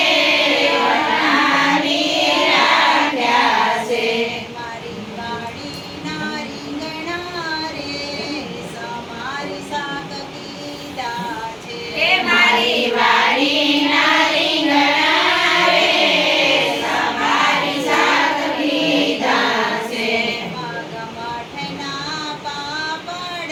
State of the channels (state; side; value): identical; both; correlation 1.00